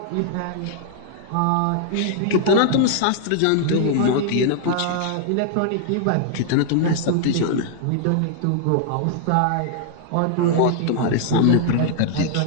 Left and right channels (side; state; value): both; different; correlation 0.00